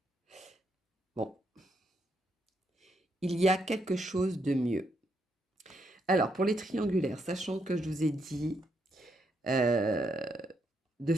Bon, il y a quelque chose de mieux. Alors, pour les triangulaires, sachant que je vous ai dit de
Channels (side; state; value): both; normal; correlation 0.77